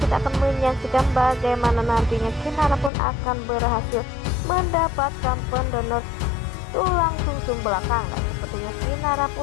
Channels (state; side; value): drops out; right; at 2.9 s